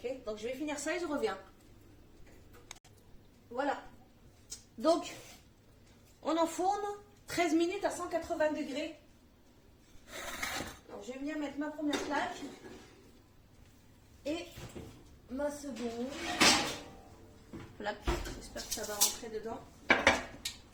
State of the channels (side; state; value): both; identical; correlation 1.00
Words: donc je vais finir ça et je reviens. Voilà. Donc, on enfourne 13 minutes à 180 degrés. Alors, je vais venir mettre ma première plaque et ma seconde plaque. J'espère que ça va rentrer dedans.